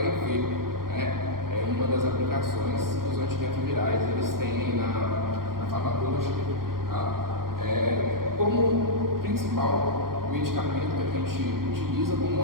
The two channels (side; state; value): left; late; 0.92 ms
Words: É uma das aplicações que os antirretrovirais eles têm na farmacologia. Tá? Como principal medicamento que a gente utiliza como